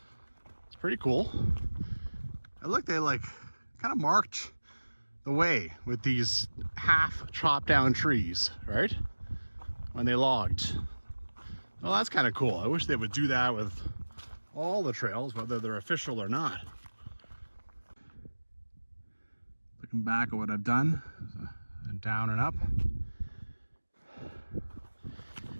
It's pretty cool. I look, they like kind of marked the way with these half chopped down trees, right? When they logged. Well, that's kind of cool. I wish they would do that with all the trails, whether they're official or not. Looking back at what I've done, down and up.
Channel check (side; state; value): both; inverted; correlation -1.00